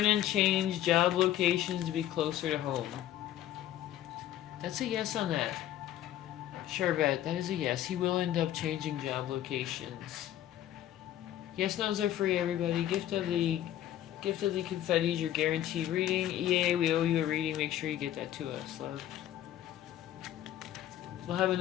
change job locations to be closer to home? That's a yes on that. Charvette, that is a yes. He will end up changing job locations. Yes, no's are free, everybody. Gift of the confettis, your guaranteed reading. EA, we owe you a reading. Make sure you get that to us, love. We'll have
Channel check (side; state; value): right; quieter; 12.3 dB